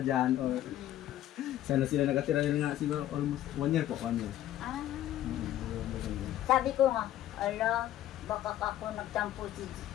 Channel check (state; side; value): quieter; right; 12.8 dB